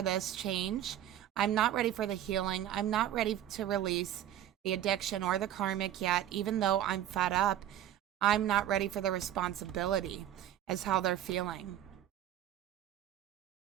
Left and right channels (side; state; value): left; quieter; 11.8 dB